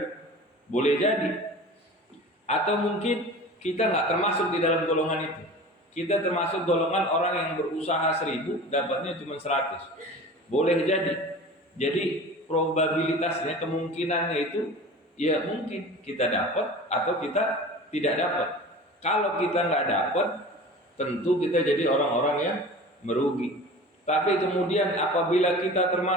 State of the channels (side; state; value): both; normal; correlation 0.37